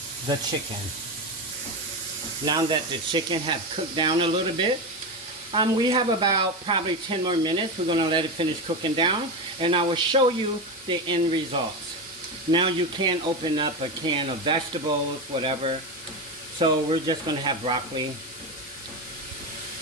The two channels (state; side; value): normal; both; correlation 0.17